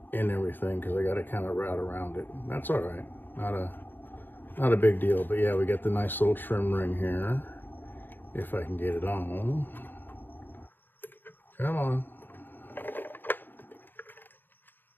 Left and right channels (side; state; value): right; late; 0.093 ms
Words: in everything, because I got to kind of route around it. That's all right. Not a big deal. But yeah, we got the nice little trim ring here. If I can get it on. Come on.